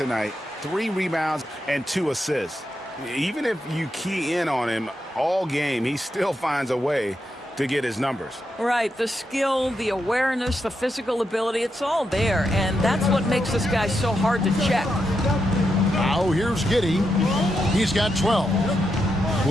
night, 3 rebounds, and 2 assists. Even if you key in on him all game, he still finds a way to get his numbers. Right, the skill, the awareness, the physical ability, it's all there, and that's what makes this guy so hard to check. Now here's Giddey. He's got 12.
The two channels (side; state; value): both; normal; correlation 0.84